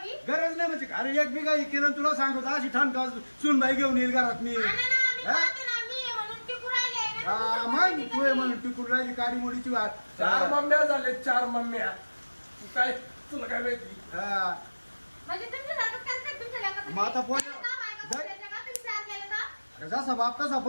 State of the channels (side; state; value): both; inverted; correlation -1.00